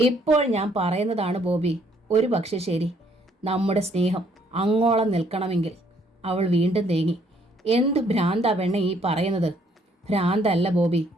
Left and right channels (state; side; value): normal; both; correlation 0.66